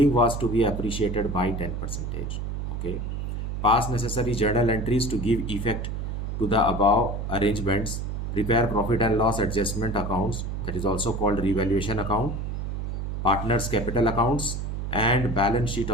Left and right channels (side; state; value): right; noise; hum, 4 dB below the sound